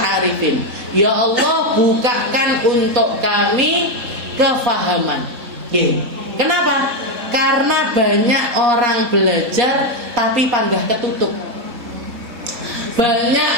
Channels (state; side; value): late; left; 3.7 ms